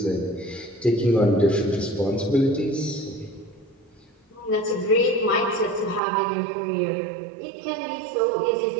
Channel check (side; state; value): left; drops out; at 6.0 s